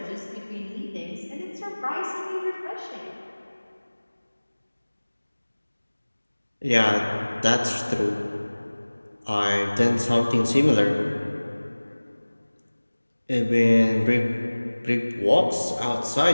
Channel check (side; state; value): both; inverted; correlation -1.00